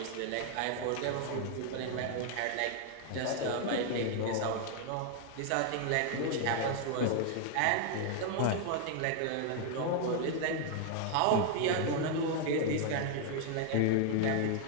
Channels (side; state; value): both; different; correlation 0.00